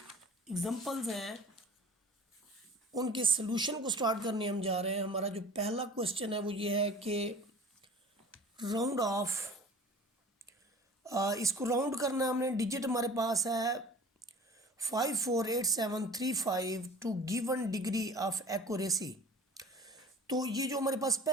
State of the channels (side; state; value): both; normal; correlation 0.43